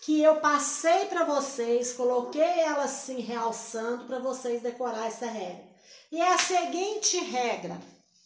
eu passei para vocês, coloquei ela assim realçando para vocês decorar essa regra. E é a seguinte regra,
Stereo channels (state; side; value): identical; both; correlation 1.00